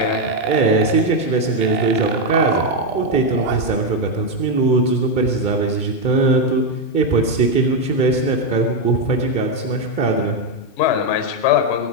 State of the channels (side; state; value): right; late; 2.2 ms